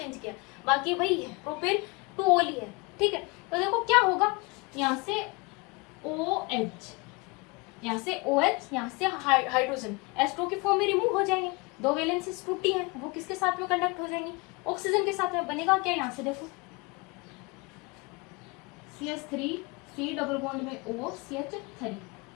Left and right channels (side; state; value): right; quieter; 27.0 dB